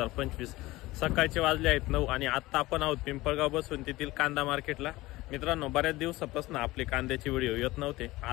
सकाळचे वाजले आहेत 9 आणि आता आपण आहोत पिंपळगाव बसून तेथील कांदा मार्केटला. मित्रांनो, बऱ्याच दिवसापासून आपले कांद्याचे व्हिडिओ येत नव्हते.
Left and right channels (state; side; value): quieter; right; 19.0 dB